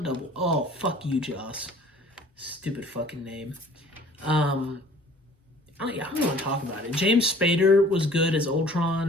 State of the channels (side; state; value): both; normal; correlation 0.51